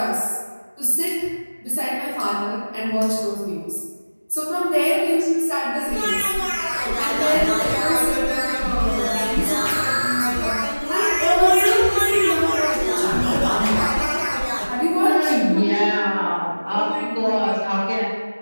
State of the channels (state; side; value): inverted; both; correlation -1.00